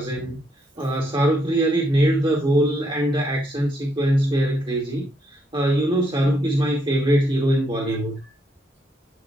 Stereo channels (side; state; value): both; normal; correlation 0.75